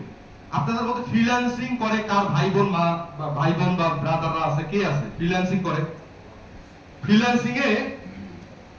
আপনাদের মধ্যে ফ্রিল্যান্সিং করে কার ভাই বোন বা ব্রাদাররা আছে কে আছে ফ্রিল্যান্সিং করে ফ্রিল্যান্সিং এ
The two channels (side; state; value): both; identical; correlation 1.00